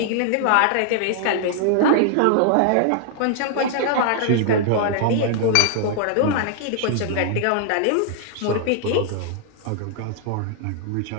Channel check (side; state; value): both; different; correlation -0.01